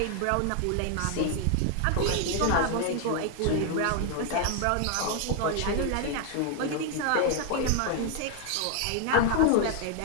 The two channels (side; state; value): both; different; correlation 0.00